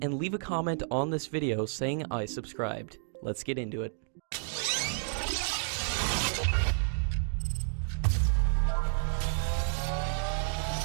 and leave a comment on this video saying I subscribed. Let's get into it.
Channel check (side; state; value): left; silent; digital silence